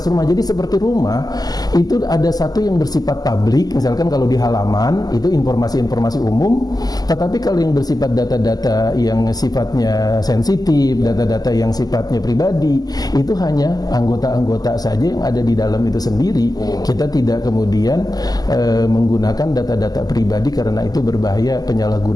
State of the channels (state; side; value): late; right; 0.19 ms